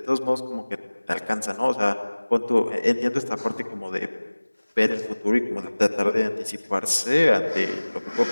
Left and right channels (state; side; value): inverted; both; correlation -1.00